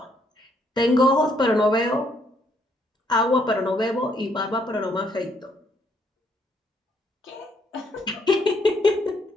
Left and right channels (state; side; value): normal; both; correlation 0.70